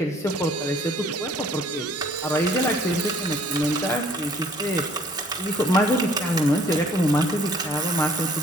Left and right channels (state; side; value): normal; both; correlation 0.57